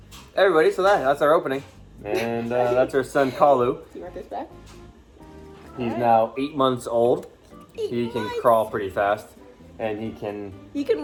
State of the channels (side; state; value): both; identical; correlation 1.00